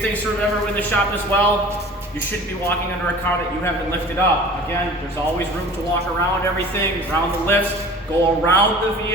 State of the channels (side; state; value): both; normal; correlation 0.43